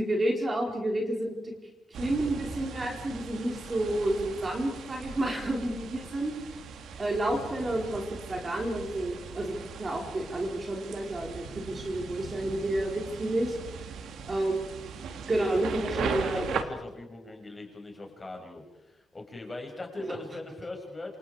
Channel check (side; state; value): both; normal; correlation 0.88